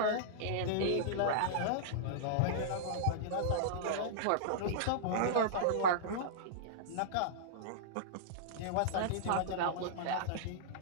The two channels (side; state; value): both; different; correlation -0.02